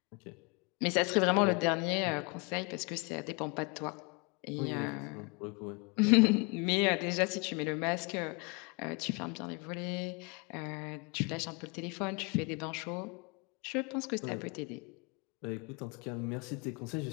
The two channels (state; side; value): quieter; right; 30.3 dB